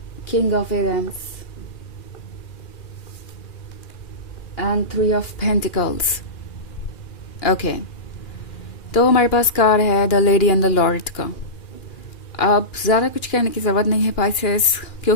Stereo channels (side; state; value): right; late; 2.4 ms